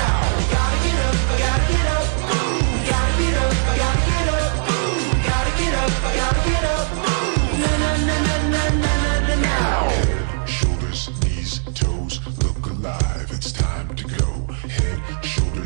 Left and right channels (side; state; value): left; silent; 63 dB below the other